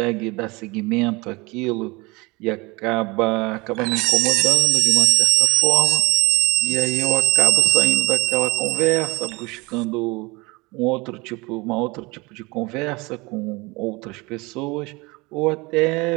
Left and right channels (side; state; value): left; quieter; 24.8 dB